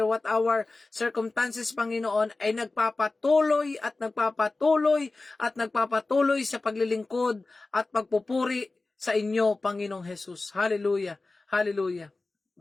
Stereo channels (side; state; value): right; quieter; 3.4 dB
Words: what our circumstances, Panginoon, ay nagpapatuloy at nagpapatuloy at nagpapatuloy sa paglilingkod at pagpupuri sa inyo, Panginoong Jesus. Hallelujah. Hallelujah.